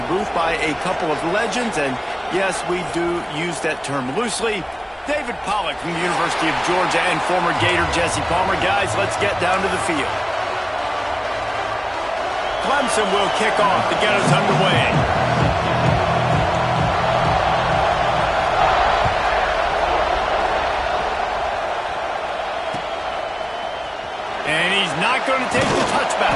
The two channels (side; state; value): both; identical; correlation 1.00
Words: booth by a couple of legends, and yes, we do use that term loosely. David Pollack from the University of Georgia and former Gator Jesse Palmer. Guys, let's get down to the field. Clemson will kick off to get us underway. And he's not going to take the